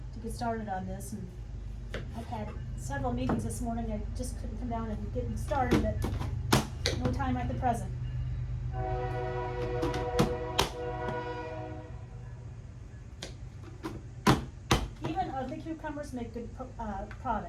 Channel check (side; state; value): both; identical; correlation 1.00